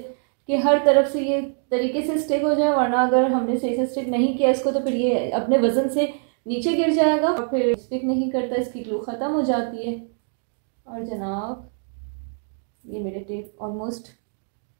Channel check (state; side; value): silent; left; 55 dB below the other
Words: कि हर तरफ से ये तरीके से स्टिक हो जाए, वरना अगर हमने सही से स्टिक नहीं किया इसको तो फिर ये अपने वजन से नीचे गिर जाएगा और फिर स्टिक नहीं करता, इसकी ग्लू ख़त्म हो जाती है। और जनाब ये मेरे टेप ऑलमोस्ट